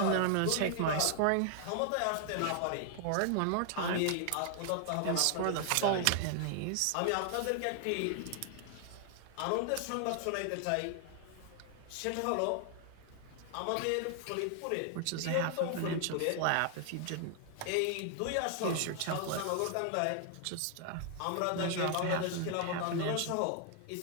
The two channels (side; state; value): both; different; correlation 0.00